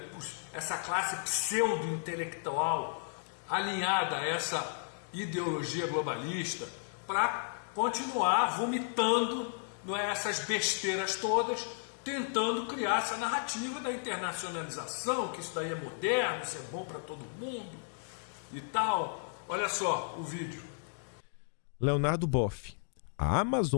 essa classe pseudo-intelectual alinhada a essa ideologia globalista, para continuar vomitando, não é, essas besteiras todas, tentando criar essa narrativa da internacionalização, que isso daí é moderno, isso é bom para todo mundo e tal. Olha só o vídeo. Leonardo Boff. A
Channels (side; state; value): right; silent; digital silence